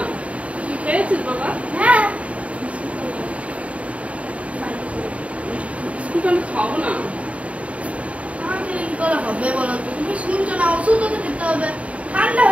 তুই খেয়েছিস বাবা? হ্যাঁ, বিস্কুট আমি খাবো না। না খেলে কি করে হবে বলো তো? তুমি শুনছো না, ওষুধও তো খেতে হবে। ঠান্ডা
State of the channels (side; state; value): left; late; 0.065 ms